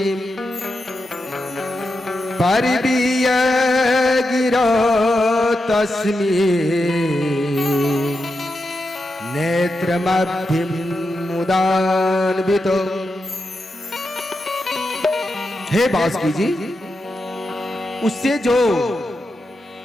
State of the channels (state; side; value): normal; both; correlation 0.87